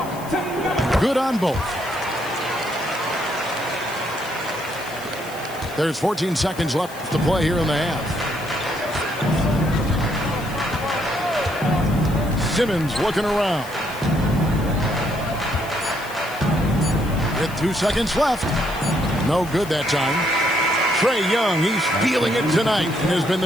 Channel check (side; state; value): left; noise; hiss, 18 dB below the sound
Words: Good on both. There's 14 seconds left to play here in the half. Simmons looking around. With 2 seconds left. No good that time. Trae Young, he's feeling it tonight and has been